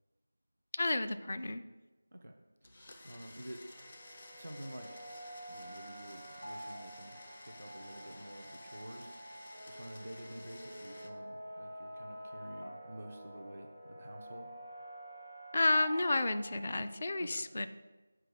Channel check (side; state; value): both; inverted; correlation -0.96